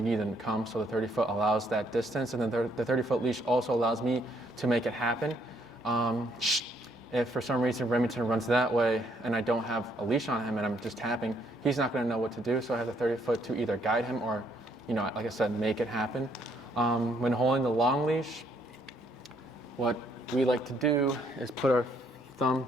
need them to come. So the 30-foot allows that distance, and then the 30-foot leash also allows me to make it happen. If for some reason Remington runs that way and I don't have a leash on him and I'm just tapping, he's not going to know what to do. So I have the 30-foot to either guide him or, like I said, make it happen. When holding the long leash, what we like to do is put our thumb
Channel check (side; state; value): both; normal; correlation 0.69